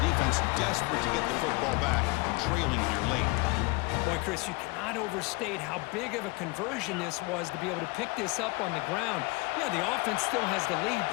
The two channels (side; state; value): right; quieter; 25.2 dB